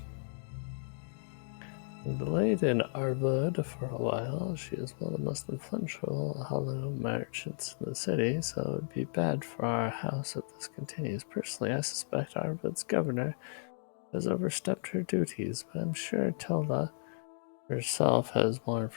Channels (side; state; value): right; silent; digital silence